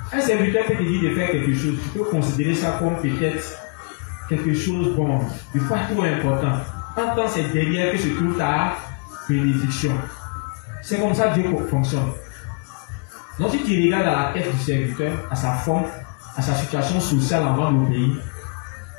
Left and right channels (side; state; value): right; quieter; 35.3 dB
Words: Un serviteur qui te dit de faire quelque chose, tu peux considérer ça comme peut-être quelque chose bon, de pas trop important. En tant que c'est derrière que se trouve ta bénédiction. C'est comme ça que Dieu fonctionne. Donc si tu regardes à la tête du serviteur, à sa forme, à sa situation sociale avant d'obéir,